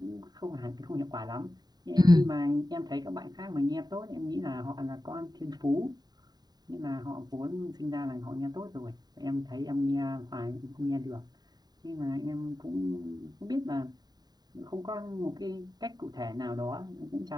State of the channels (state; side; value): late; left; 0.20 ms